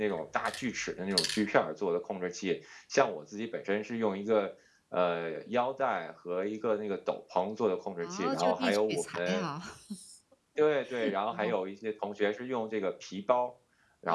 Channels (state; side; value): identical; both; correlation 1.00